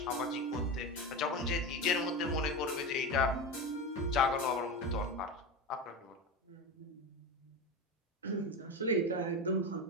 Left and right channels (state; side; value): normal; both; correlation 0.21